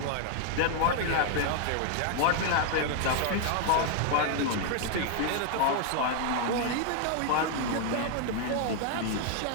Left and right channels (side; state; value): both; different; correlation 0.00